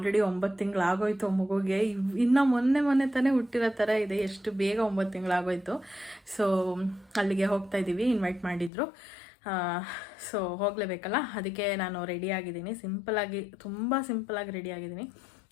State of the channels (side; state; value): right; drops out; at 8.7 s